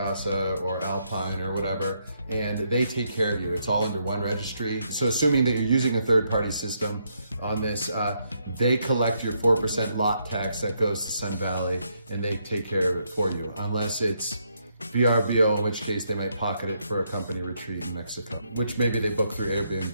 or Alpine or whatever, and they take care of you. It's all under one registry. So assuming that you're using a third-party system on this, they collect your 4% lot tax that goes to Sun Valley, and they take care of it for you, unless it's VRBO, in which case they might pocket it for a company retreat in Mexico, which maybe they book through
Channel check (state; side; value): inverted; both; correlation -0.76